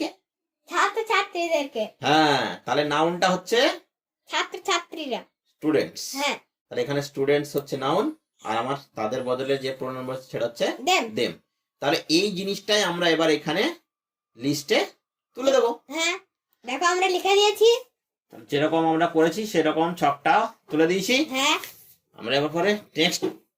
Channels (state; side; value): identical; both; correlation 1.00